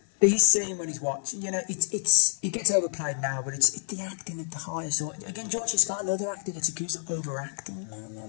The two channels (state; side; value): silent; right; 59 dB below the other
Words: his scene when he's watching, you know, it gets overplayed now, but it's the acting at the highest. Or again, George C. Scott, another actor, gets accused of overacting. No,